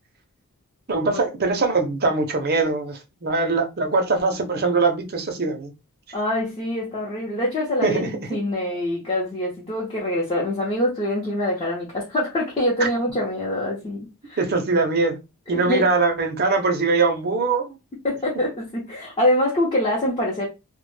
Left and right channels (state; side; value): normal; both; correlation -0.12